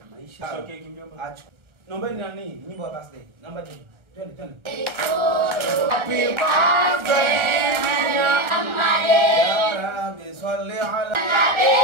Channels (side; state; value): left; late; 1.4 ms